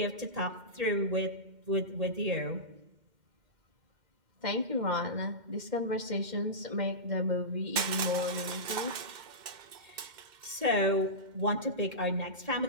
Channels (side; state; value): left; late; 2.1 ms